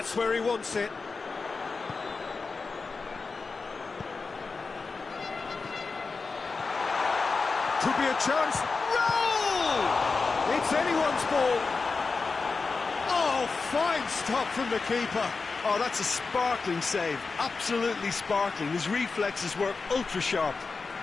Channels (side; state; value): right; quieter; 4.4 dB